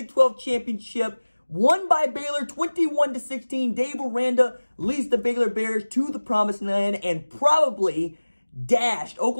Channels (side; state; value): both; inverted; correlation -1.00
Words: 12 championship won by Baylor 21-16. Dave Aranda leads the Baylor Bears to the promised land and probably dashed